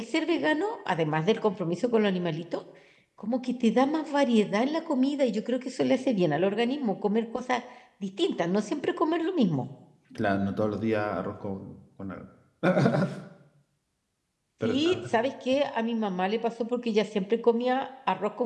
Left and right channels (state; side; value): identical; both; correlation 1.00